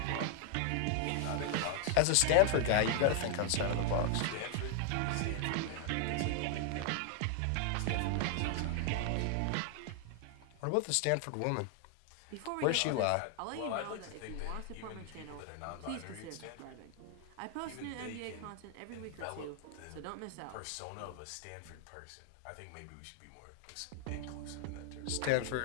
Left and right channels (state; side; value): different; both; correlation 0.00